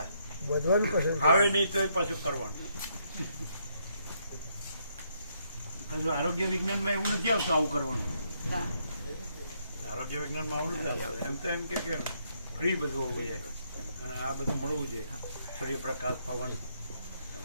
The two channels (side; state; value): both; inverted; correlation -0.74